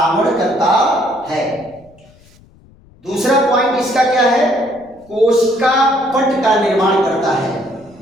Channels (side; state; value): left; noise; rumble, 28 dB below the sound